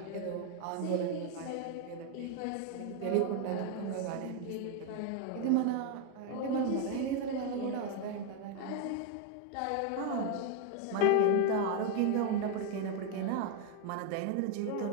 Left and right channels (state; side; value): different; both; correlation 0.01